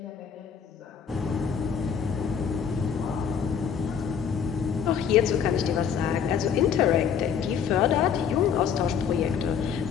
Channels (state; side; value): quieter; right; 7.3 dB